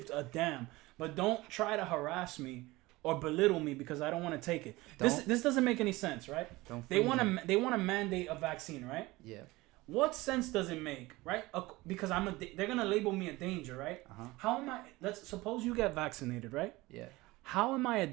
a damn. But don't try to harass me or belittle me because I don't want to take it. This doesn't make any sense, right? They want to mandate a vaccine, right? Yeah. What sense does it make, right? Because they're gonna label me a danger, right? Uh-huh. How am I? Let's suppose you get vaccinated, right? Yeah. How am I a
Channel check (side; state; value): left; quieter; 20.5 dB